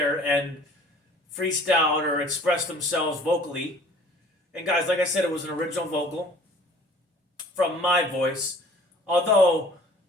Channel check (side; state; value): both; normal; correlation 0.51